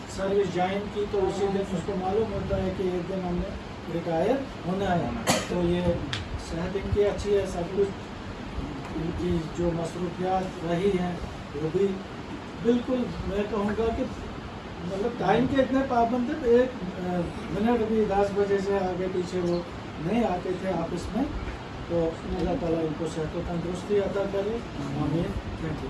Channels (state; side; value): identical; both; correlation 1.00